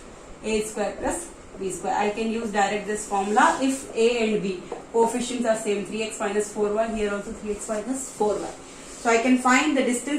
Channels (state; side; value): identical; both; correlation 1.00